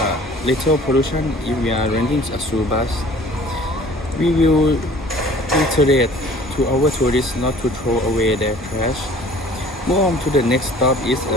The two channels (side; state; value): both; normal; correlation 0.49